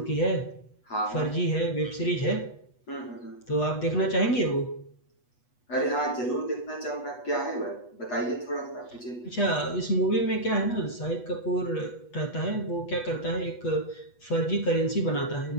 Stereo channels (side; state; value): right; late; 8.2 ms